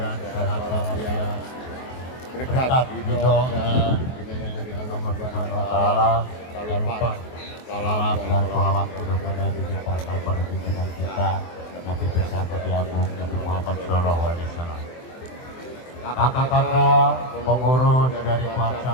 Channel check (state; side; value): late; right; 23 ms